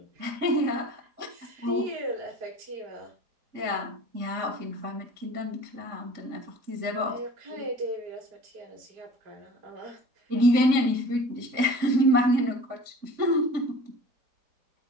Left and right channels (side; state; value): left; late; 3.6 ms